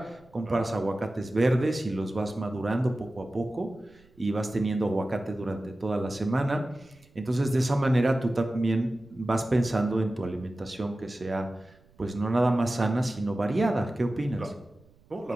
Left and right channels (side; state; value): right; noise; rumble, 29 dB below the sound